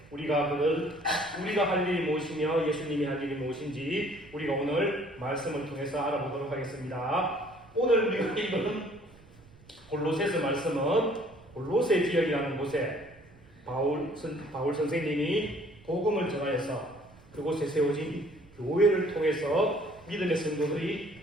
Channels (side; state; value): right; noise; rumble, 25 dB below the sound